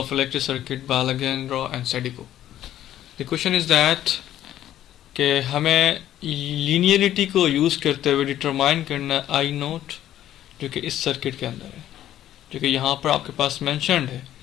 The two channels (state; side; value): quieter; right; 12.2 dB